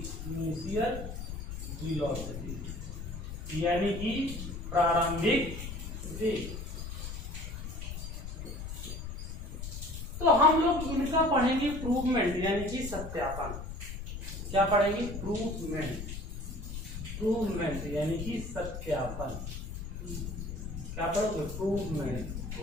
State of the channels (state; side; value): noise; left; rumble, 7 dB below the sound